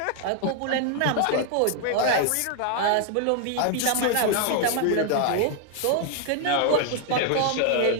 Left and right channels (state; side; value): different; both; correlation 0.00